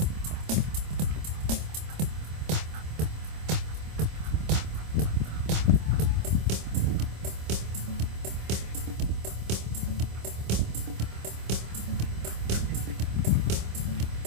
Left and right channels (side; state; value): left; late; 26 ms